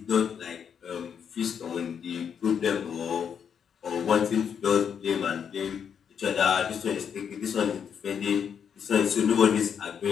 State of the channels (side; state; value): right; quieter; 7.6 dB